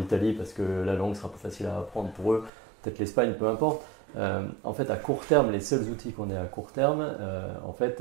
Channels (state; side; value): drops out; left; at 2.5 s